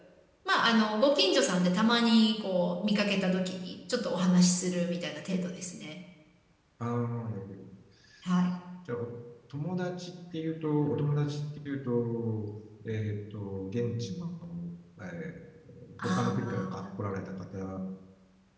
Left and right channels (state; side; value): identical; both; correlation 1.00